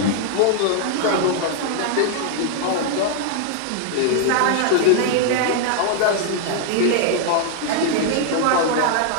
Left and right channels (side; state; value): both; different; correlation 0.00